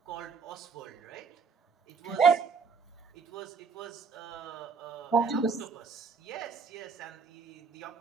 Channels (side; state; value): left; quieter; 5.4 dB